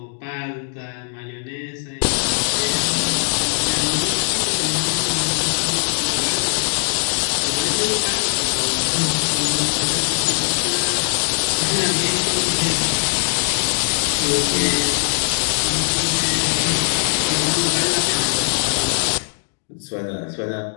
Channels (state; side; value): silent; right; 66 dB below the other